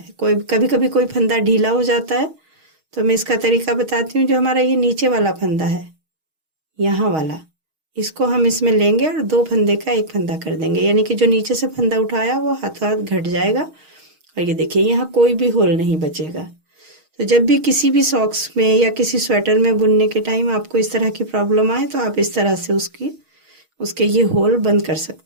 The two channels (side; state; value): left; late; 6.4 ms